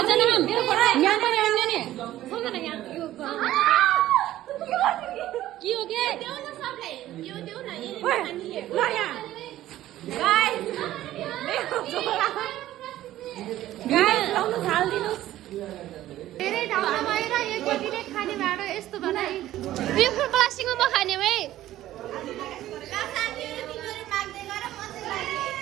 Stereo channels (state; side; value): quieter; left; 14.1 dB